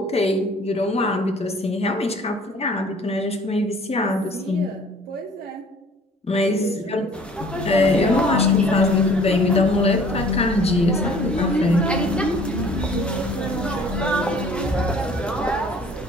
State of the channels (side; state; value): both; normal; correlation 0.52